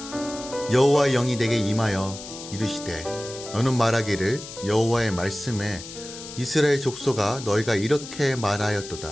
여호와의 영이 내게 임하여 이르시되 너는 말하기를 여호와의 말씀에 이스라엘 족속아, 너희가 이렇게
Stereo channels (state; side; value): noise; left; hiss, 13 dB below the sound